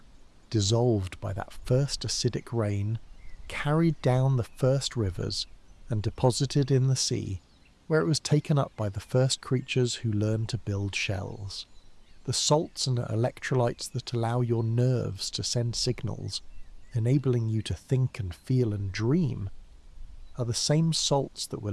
dissolved by that first acidic rain, carried down the first rivers, and deposited in the sea, where it was taken up by the first creatures who learned to build shells. The salts and electrolytes that allow your nerves to send signals, enabling you to think and feel and dream, are the same salts that were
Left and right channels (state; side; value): identical; both; correlation 1.00